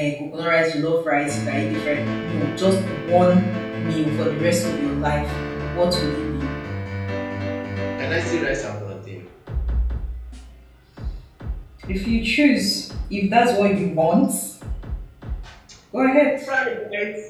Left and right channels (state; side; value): identical; both; correlation 1.00